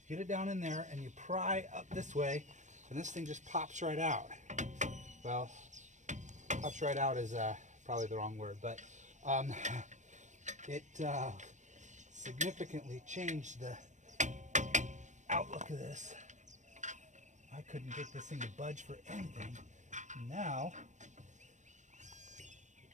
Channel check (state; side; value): late; left; 0.35 ms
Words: Get it down in there and you pry up this way, and this thing just pops right out. Well, pops right out is probably the wrong word, but it significantly changed the outlook of this. I couldn't get this thing to budge for anything. Now